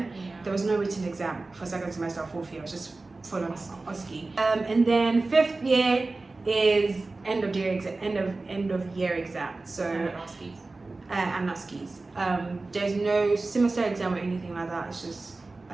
There was no written exam for second semester or fourth year. It was just full on OSCE. And then fifth year is end of year exam. So and OSCEs. There's no semester exam or anything like that. It's just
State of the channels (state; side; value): quieter; left; 3.4 dB